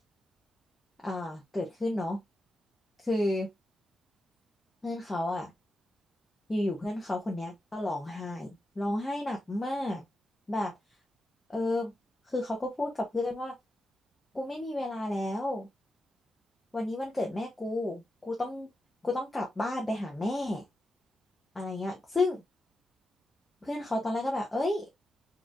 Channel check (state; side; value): normal; both; correlation 0.89